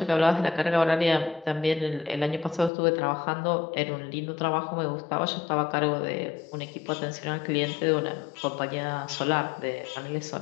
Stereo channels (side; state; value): right; drops out; at 2.7 s